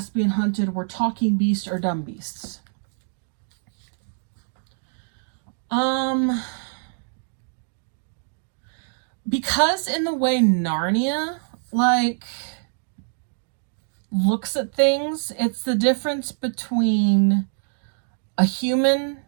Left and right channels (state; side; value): silent; left; digital silence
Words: hunted were talking beasts or dumb beasts? Because in the way Narnia, looks at things, it's the difference between a human